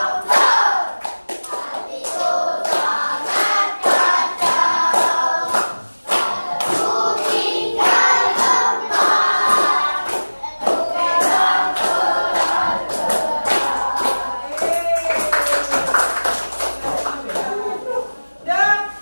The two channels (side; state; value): both; inverted; correlation -1.00